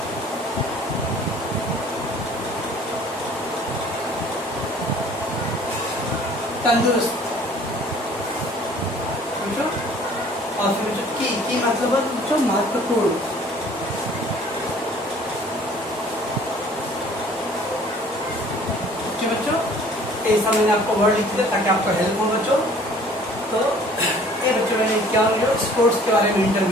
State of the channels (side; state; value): both; normal; correlation 0.53